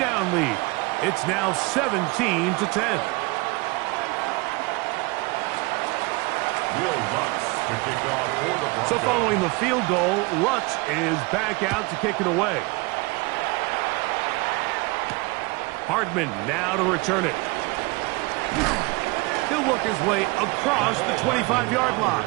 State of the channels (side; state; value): left; quieter; 25.7 dB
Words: lead. It's now 17-10. So following the field goal, Lutz is back out to kick it away. Hardman now to return it. He'll work his way across the 25-yard line.